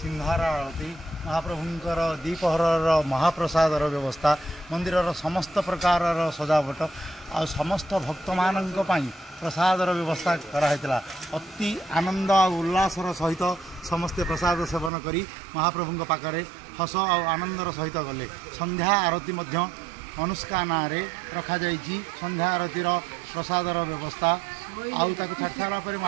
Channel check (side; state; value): left; drops out; at 14.9 s